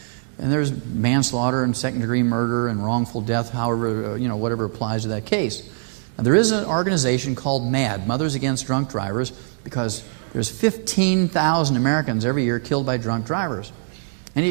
And there's manslaughter and second-degree murder and wrongful death, however, whatever applies to that case. Now, there is an organization called MAD, Mothers Against Drunk Drivers, because there's 15,000 Americans every year killed by drunk drivers.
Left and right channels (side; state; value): left; silent; digital silence